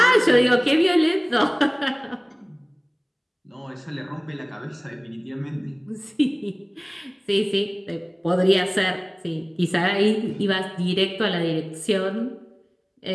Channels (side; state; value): both; identical; correlation 1.00